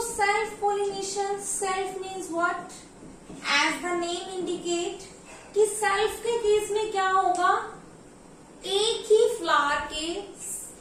self means what? As the name indicate कि self के case में क्या होगा, एक ही flower के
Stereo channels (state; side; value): identical; both; correlation 1.00